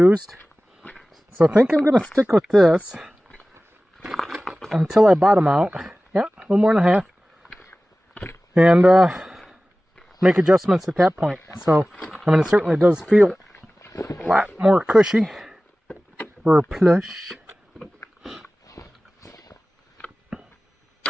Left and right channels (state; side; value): normal; both; correlation 0.97